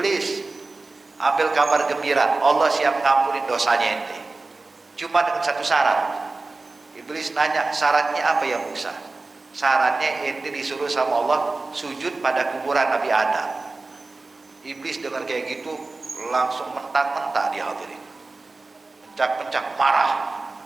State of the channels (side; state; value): left; quieter; 3.5 dB